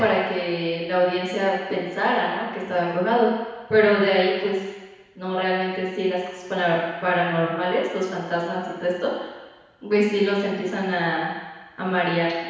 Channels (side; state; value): both; identical; correlation 1.00